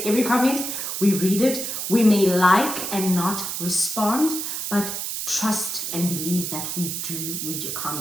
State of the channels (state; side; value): noise; right; hiss, 4 dB below the sound